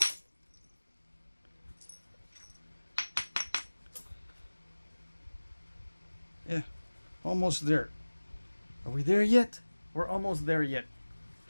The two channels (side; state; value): both; inverted; correlation -1.00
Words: Yeah, almost there. Are we there yet? We're almost there yet.